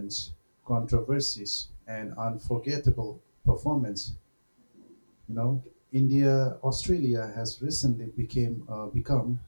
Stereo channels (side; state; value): both; inverted; correlation -1.00